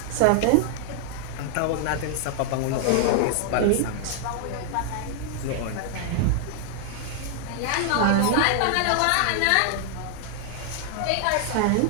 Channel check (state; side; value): different; both; correlation 0.00